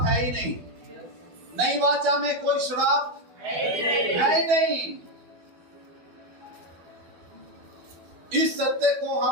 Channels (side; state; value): left; late; 12 ms